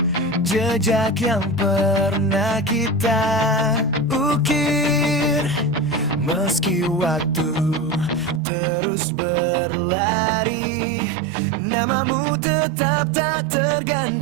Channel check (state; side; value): drops out; left; at 8.4 s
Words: jejak yang pernah kita ukir. Meski waktu terus berlari, namamu tetap tak